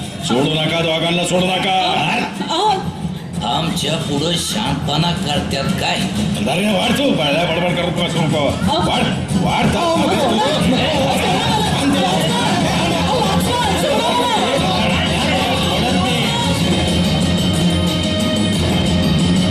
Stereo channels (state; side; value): identical; both; correlation 1.00